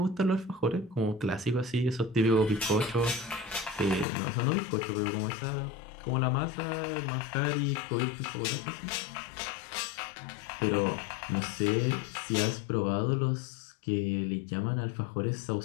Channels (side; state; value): right; drops out; at 4.0 s